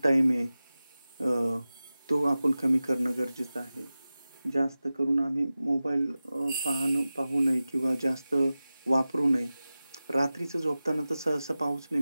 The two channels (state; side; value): inverted; both; correlation -0.96